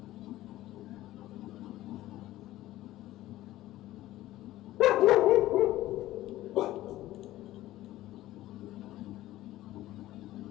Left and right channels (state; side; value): quieter; right; 15.4 dB